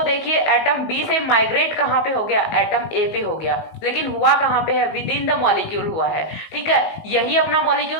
देखिए एटम बी से माइग्रेट कहाँ पे हो गया, एटम ए पे हो गया, लेकिन हुआ कहाँ पे है, विद इन द मॉलिक्यूल हुआ है। ठीक है, यही अपना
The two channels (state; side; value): late; right; 19 ms